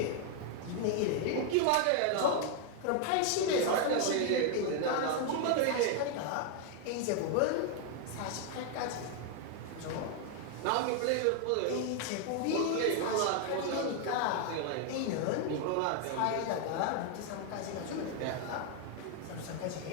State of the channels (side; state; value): both; different; correlation 0.00